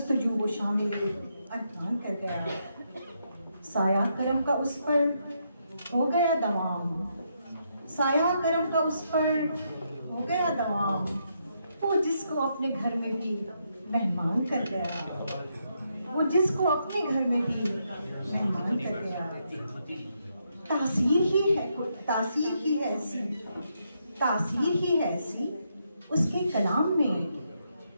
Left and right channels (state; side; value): inverted; both; correlation -0.79